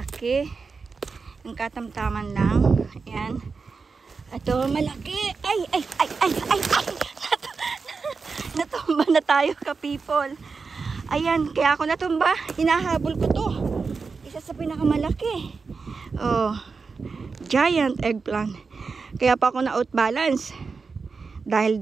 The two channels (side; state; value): left; quieter; 4.7 dB